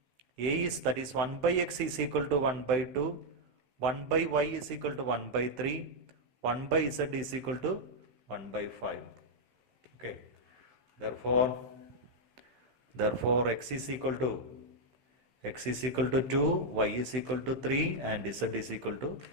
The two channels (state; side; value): late; left; 16 ms